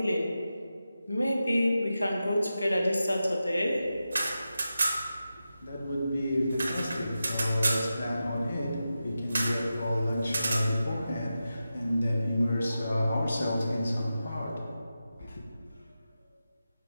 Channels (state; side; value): inverted; both; correlation -0.91